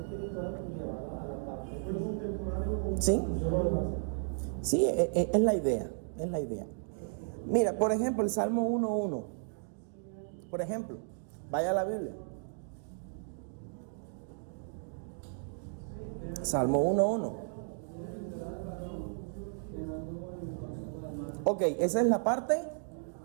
y llevarlo a la parte física. Sí. Sí, es la idea, es la idea. Mira, por ejemplo, el Salmo 1:1. Por ejemplo, vaya a la Biblia. Salmo 1:1. Ok, esa es la parte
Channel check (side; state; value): left; silent; digital silence